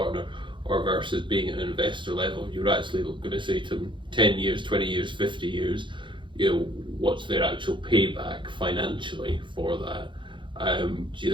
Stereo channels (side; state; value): left; late; 0.23 ms